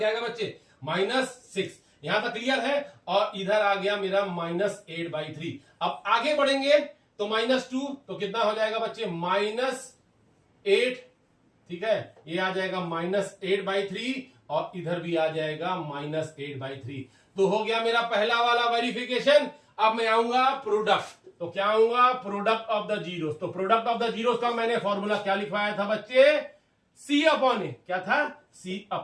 आएगा बच्चे, -6। यहां तक क्लियर है। और इधर आ गया मेरा -8/3। अब आगे बढ़ेंगे तो -2 तो कितना हो जाएगा बच्चे, -8। ठीक है, ये आ जाएगा -8/3 और इधर भी आ जाएगा -8/3। तो हो गया मेरा पहला वाला वेरिफिकेशन। अब मैं आऊंगा प्रोडक्ट। तो क्या आऊंगा, प्रोडक्ट ऑफ द जीरोस। तो प्रोडक्ट ऑफ द जीरोस का मैंने फॉर्मूला क्या लिखवाया था बच्चे, C/A। क्या था,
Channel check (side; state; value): both; identical; correlation 1.00